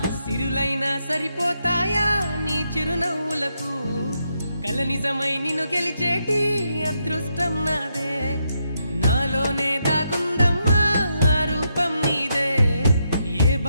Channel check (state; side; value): inverted; both; correlation -0.81